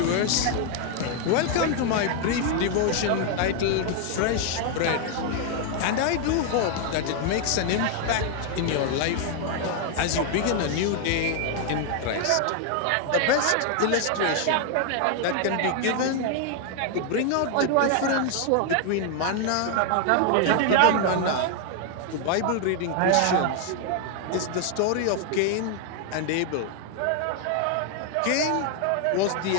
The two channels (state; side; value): different; both; correlation 0.00